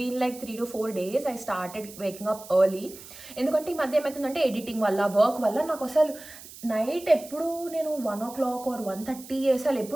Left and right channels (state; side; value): noise; right; hiss, 17 dB below the sound